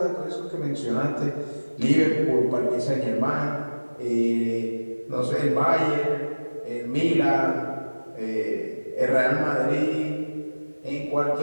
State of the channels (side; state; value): both; inverted; correlation -1.00